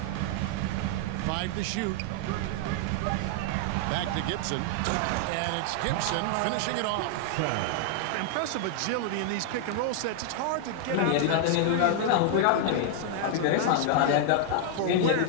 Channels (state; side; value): different; both; correlation 0.00